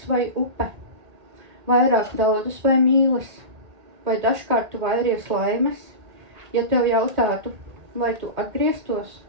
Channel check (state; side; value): late; left; 1.8 ms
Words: vai upe, vairāk daudas vai mīles, vai dažkārt tu vairies laimes, ja tev jautātu, vai tu atgrieztos